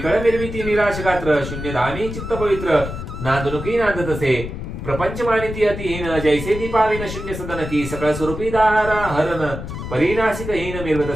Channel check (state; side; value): noise; left; rumble, 8 dB below the sound